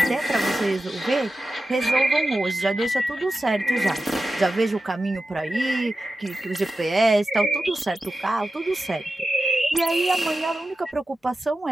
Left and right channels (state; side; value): normal; both; correlation 0.92